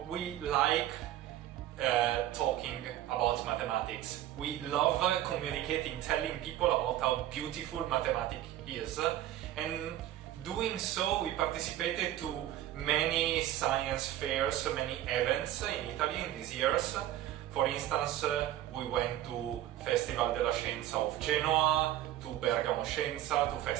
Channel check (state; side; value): quieter; left; 13.2 dB